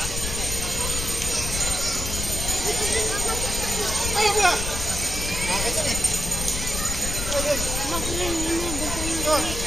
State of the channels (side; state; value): left; noise; rumble, 4 dB below the sound